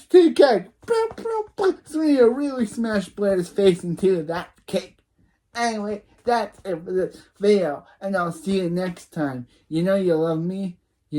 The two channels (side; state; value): both; identical; correlation 1.00